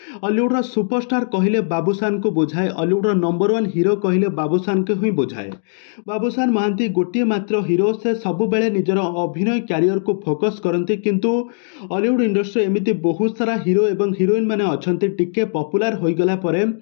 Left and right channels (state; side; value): silent; right; digital silence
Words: हॉलीवुड सुपरस्टार कहले बाबूशान को बुझाए, हॉलीवुड नंबर 1 हीरो कहले बाबूशान को ही बुझाए। बाबूशान महांती गोटे मात्र हीरो, से सब बेले निजर अभिनय कैरियर को फोकस करती, किंतु हॉलीवुड इंडस्ट्री एमती बहुत सारा हीरो एवं हीरोइन मैंने अच्छा टिके पपुलार हो गला परे